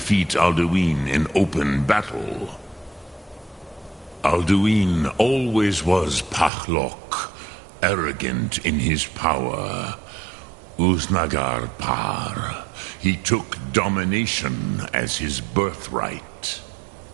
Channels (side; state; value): left; drops out; at 6.5 s